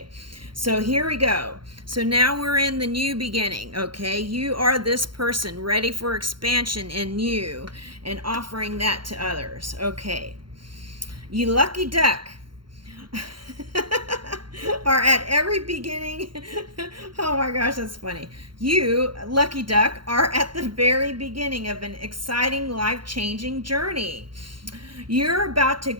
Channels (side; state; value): left; late; 0.73 ms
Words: so here we go. So now we're in the new beginning, okay? You are this person ready for expansion in you and offering that to others, okay? You lucky duck. Are at every beginning. Oh my gosh, that's funny. You, lucky duck, are at the very beginning of an exciting, life-changing journey. You're about to